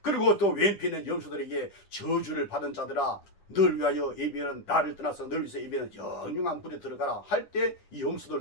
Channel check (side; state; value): right; late; 10 ms